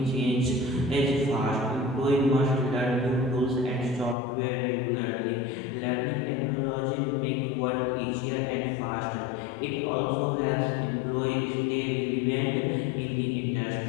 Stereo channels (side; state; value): right; drops out; at 4.2 s